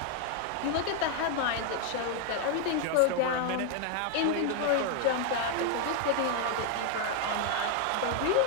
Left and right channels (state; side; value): different; both; correlation 0.01